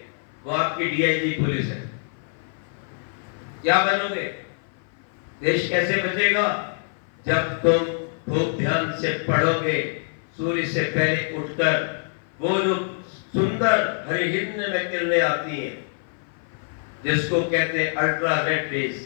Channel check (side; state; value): right; silent; 56 dB below the other